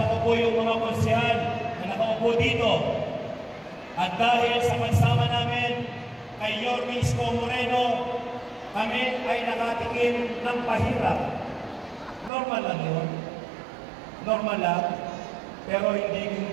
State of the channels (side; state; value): left; drops out; at 12.3 s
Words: ko po yung mga konsihal na nakaupo dito. At dahil sa pagsama namin kay Yorme Isko Moreno, kami ay nakatikim ng pahirap. Normal lang yun. Normal lang. Pero